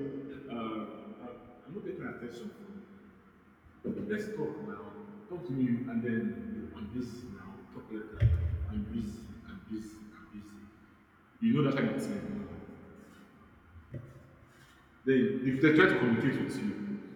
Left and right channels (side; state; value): both; identical; correlation 1.00